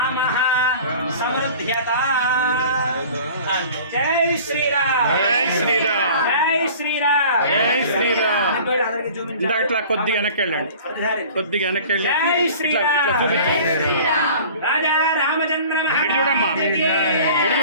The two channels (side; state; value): both; inverted; correlation -0.44